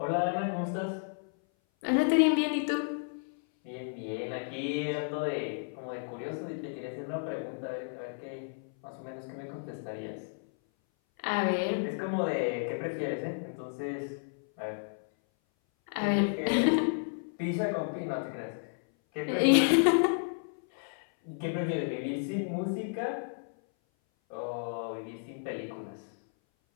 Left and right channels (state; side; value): silent; right; 56 dB below the other